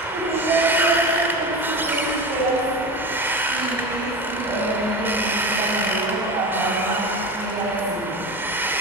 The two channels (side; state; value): both; normal; correlation 0.27